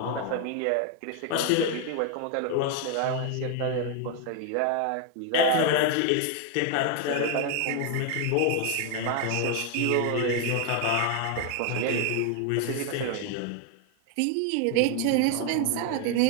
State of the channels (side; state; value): both; different; correlation 0.01